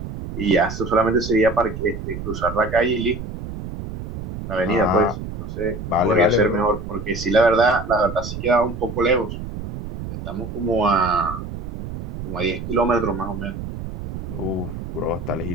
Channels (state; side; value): noise; right; rumble, 8 dB below the sound